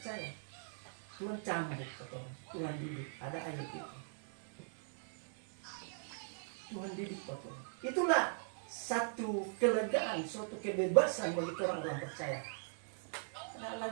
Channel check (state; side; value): silent; left; digital silence